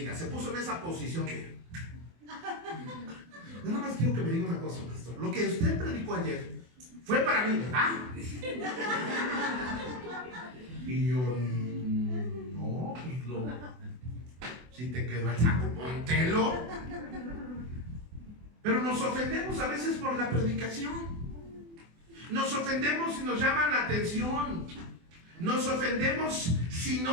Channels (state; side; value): late; left; 24 ms